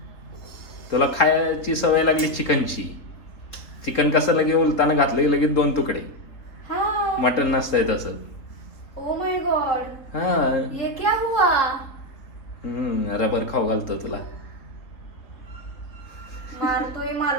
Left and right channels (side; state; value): right; late; 3.7 ms